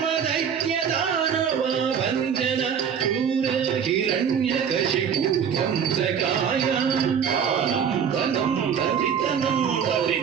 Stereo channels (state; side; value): quieter; left; 7.6 dB